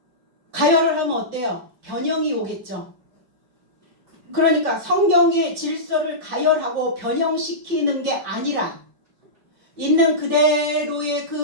가열을 하면 어때요? 변형이 오겠죠. 그러니까 성경의 질서를 가열하고 변형시키는 게 아니라 있는 그대로의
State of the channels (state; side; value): late; left; 5.5 ms